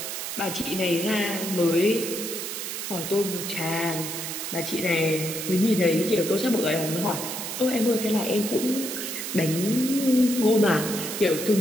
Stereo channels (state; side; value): noise; right; hiss, 5 dB below the sound